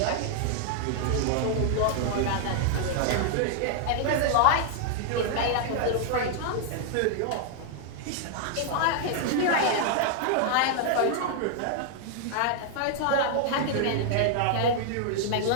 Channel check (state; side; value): different; both; correlation 0.00